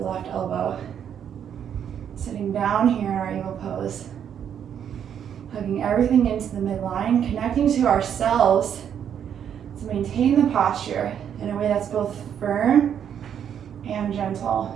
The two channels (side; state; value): left; quieter; 8.8 dB